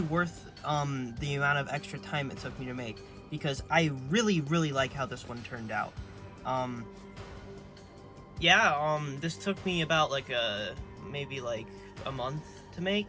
the amount of extra time it took me to make, because I really like how this one turned out. This took me about like maybe like a month to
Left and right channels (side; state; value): both; identical; correlation 1.00